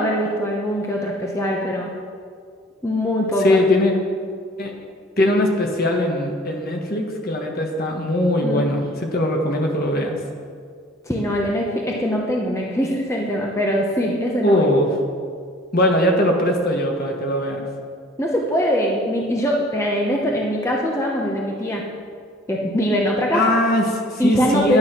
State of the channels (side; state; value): both; normal; correlation 0.53